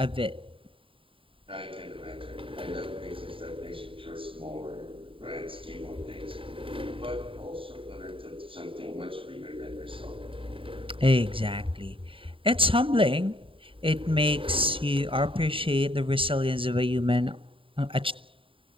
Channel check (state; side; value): late; left; 0.25 ms